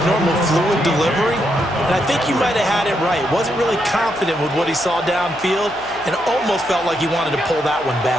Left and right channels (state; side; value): noise; left; hum, 22 dB below the sound